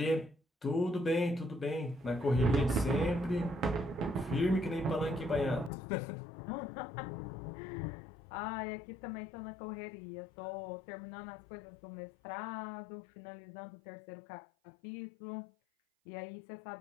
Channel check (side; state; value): right; drops out; at 5.7 s